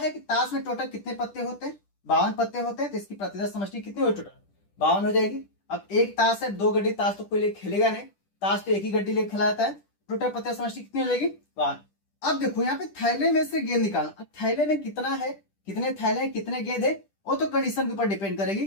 कि ताश में टोटल कितने पत्ते होते हैं? 52 पत्ते होते हैं। तो इसकी प्रतिदर्श समष्टि कितनी हो टोटल? 52 हो जाएगी। अब एक ताश है, दो गड्डी ताश तो कोई ले खेलेगा नहीं, ताश तो एक ही गड्डी ले खेला जाता है। टोटल प्रतिदर्श समष्टि कितनी हो जाएगी? 52। अब देखो यहाँ पे थैले में से गेंद निकालना। अब थैले में कितना है, कितने थैले हैं, कितने गेंद है, वो तो कंडीशन के ऊपर डिपेंड करेगी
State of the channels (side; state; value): right; late; 10 ms